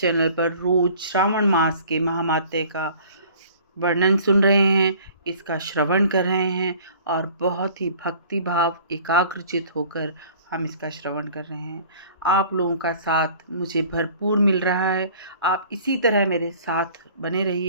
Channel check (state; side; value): inverted; both; correlation -0.50